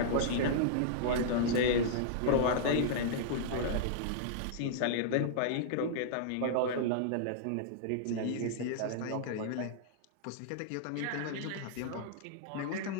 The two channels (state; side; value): different; both; correlation -0.02